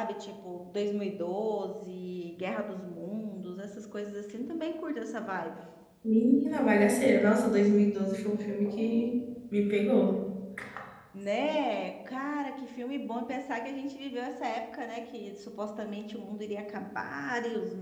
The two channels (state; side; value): identical; both; correlation 1.00